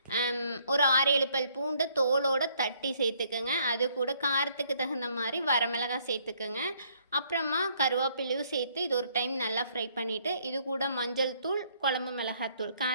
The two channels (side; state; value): both; inverted; correlation -0.67